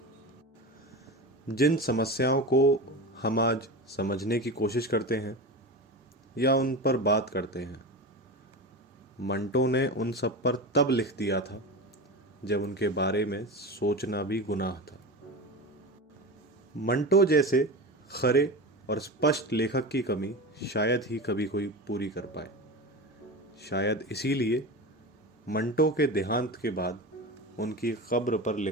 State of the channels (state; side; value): normal; both; correlation 0.26